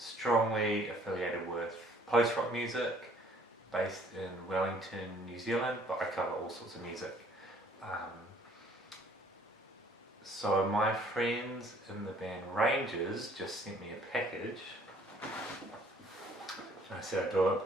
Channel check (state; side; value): normal; both; correlation 0.59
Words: affiliated with post-rock music, based in Wellington, New Zealand, but I cover all sorts of music. So my friends in the band Rangers just sent me a package. I said I'd do